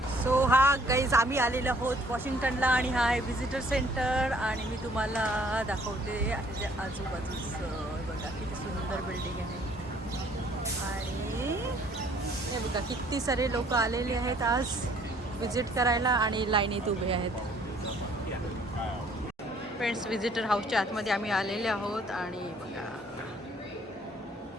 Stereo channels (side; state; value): both; normal; correlation 0.60